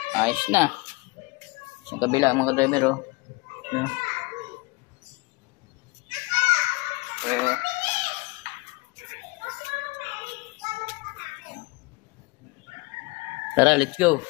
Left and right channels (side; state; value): right; quieter; 25.0 dB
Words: Ayos na. Yung kabila mga ka-driver o. Ayan. So, tara, let's go.